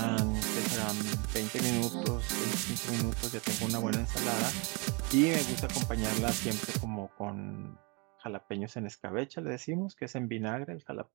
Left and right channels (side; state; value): left; quieter; 31.1 dB